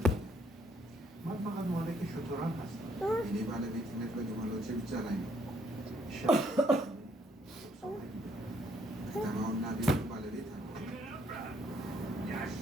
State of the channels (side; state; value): both; normal; correlation 0.68